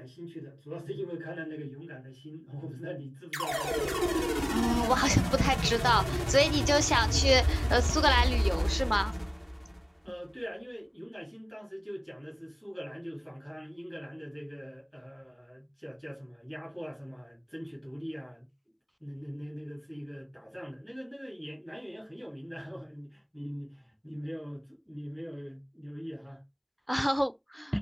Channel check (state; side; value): identical; both; correlation 1.00